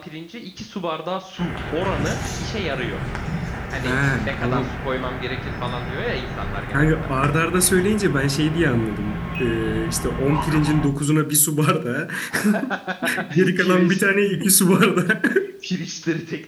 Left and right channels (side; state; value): both; identical; correlation 1.00